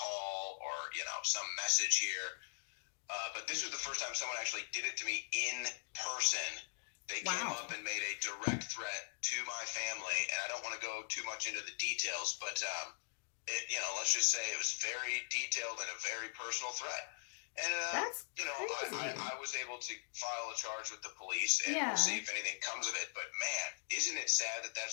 or, some message here. But this was the first time someone actually did it to me in person. They came up and made a direct threat to my family. And I don't want to go too much into the details, but, let's just say it was very detailed and a very personal threat. And, that's crazy. I was able to file a charge with the police, and we'll see if anything comes of it. But, man, isn't it sad that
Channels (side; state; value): right; silent; digital silence